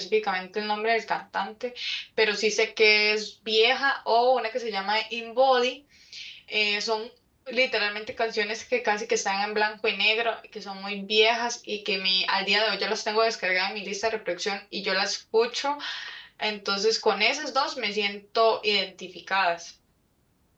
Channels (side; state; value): both; identical; correlation 1.00